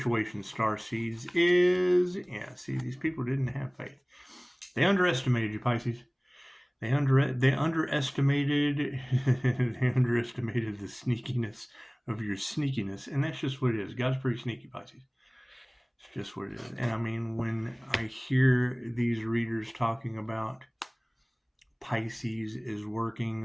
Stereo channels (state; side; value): identical; both; correlation 1.00